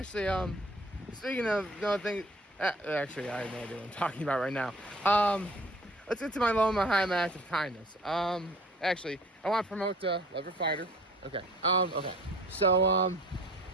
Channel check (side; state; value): both; normal; correlation 0.50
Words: speaking of no thing, actually, I have no idea what I'm talking about right now. Let's get to my low and my high, my act of kindness. Actually, I want to promote Lever Fighter. Okay. Okay. So,